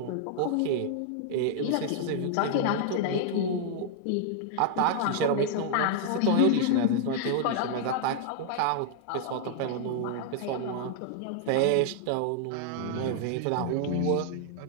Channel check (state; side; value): different; both; correlation 0.00